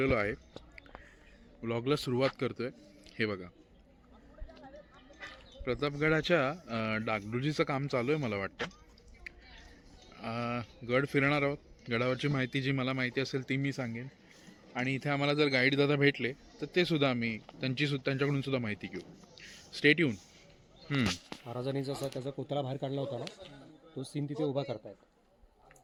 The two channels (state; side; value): identical; both; correlation 1.00